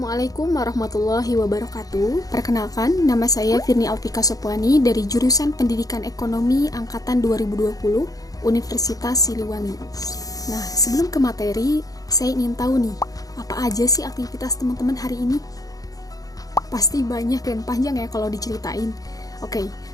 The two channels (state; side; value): late; right; 0.17 ms